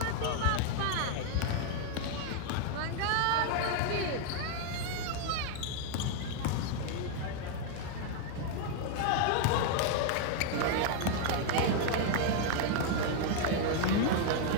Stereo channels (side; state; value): both; different; correlation 0.00